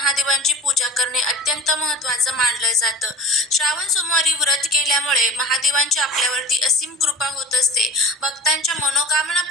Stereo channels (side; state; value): both; normal; correlation 0.35